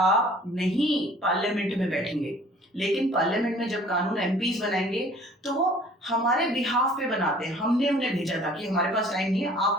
नहीं पार्लियामेंट में बैठेंगे, लेकिन पार्लियामेंट में जब कानून एमपीज बनाएंगे तो वो हमारे बिहाफ पे बनाते हैं। हमने उन्हें भेजा था कि हमारे पास टाइम नहीं है, आप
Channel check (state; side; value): normal; both; correlation 0.52